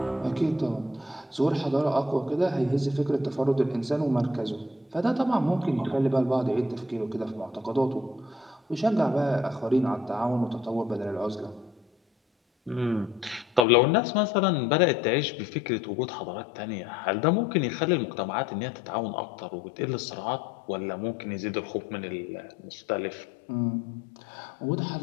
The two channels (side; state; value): right; drops out; at 13.7 s